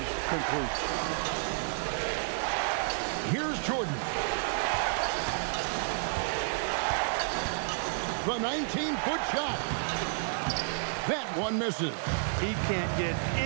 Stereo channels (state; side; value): silent; left; digital silence